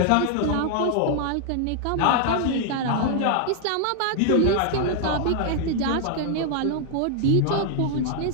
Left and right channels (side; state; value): both; different; correlation 0.00